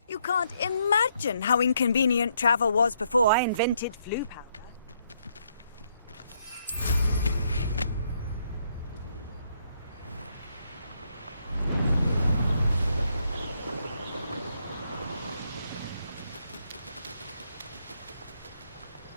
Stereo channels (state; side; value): inverted; both; correlation -0.74